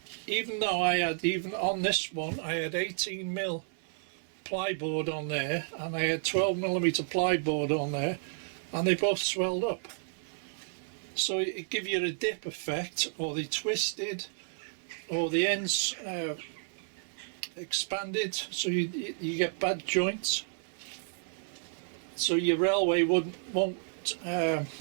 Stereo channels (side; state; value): left; silent; 57 dB below the other